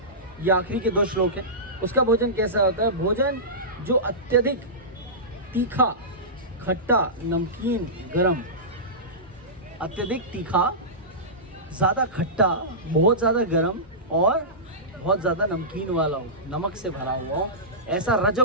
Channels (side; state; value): both; normal; correlation -0.18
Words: ये आखिरी के 2 श्लोक है। उसका भोजन कैसा होता है? भोजन जो अत्यधिक तीखा, खट्टा, नमकीन, गरम, अत्यधिक तीखा, ज़्यादा खट्टा, बहुत ज़्यादा गरम और बहुत ज़्यादा नमकीन वाला हो, नमक से भरा हुआ हो, ऐसा